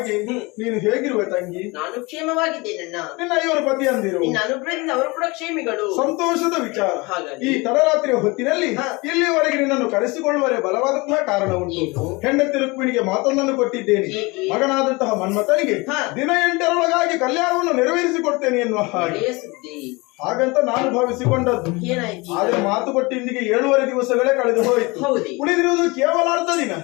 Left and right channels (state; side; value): quieter; right; 25.3 dB